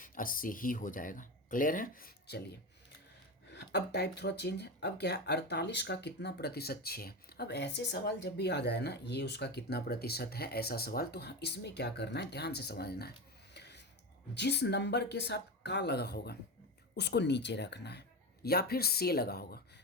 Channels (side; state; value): both; normal; correlation 0.21